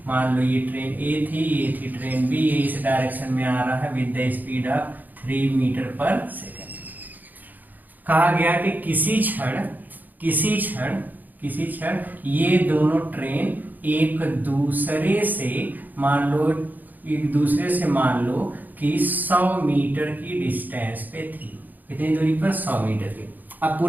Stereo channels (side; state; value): left; late; 0.084 ms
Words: मान लो ये ट्रेन A थी, ये थी ट्रेन B, ये इस डायरेक्शन में आ रहा है with the speed of 3 metre per second. कहा गया कि किसी क्षण ये दोनों ट्रेन एक दूसरे से मान लो कि 100 मीटर की डिस्टेंस पे थी। कितनी दूरी पर? 100 मीटर की। अब